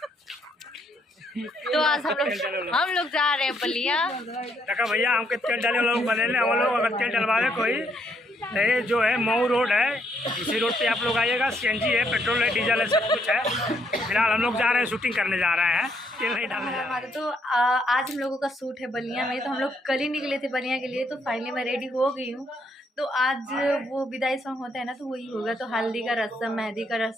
तो आज हम लोग जा रहे हैं बलिया। भैया हमके तेल डाले वाला लोग बने हम लोग अगर तेल डलवावे कोई ये जो है मऊ रोड है, इसी रोड पे आप लोग आइएगा। सीएनजी है, पेट्रोल है, डीजल है, सब कुछ है। फिलहाल हम लोग जा रहे हैं, शूटिंग करने जा रहे हैं, तेल नहीं डालने जा रहे हैं। तो आज हम लोगों का शूट है बलिया में। तो हम लोग कल ही निकले थे बलिया के लिए। तो फाइनली मैं रेडी हो गई हूँ। तो आज वो विदाई सॉन्ग होता है ना, तो वही होगा। तो हल्दी का रस्म, मेहंदी का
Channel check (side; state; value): both; normal; correlation 0.73